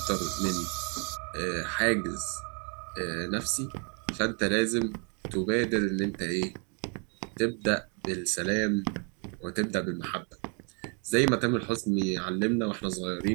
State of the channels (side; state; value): left; quieter; 36.8 dB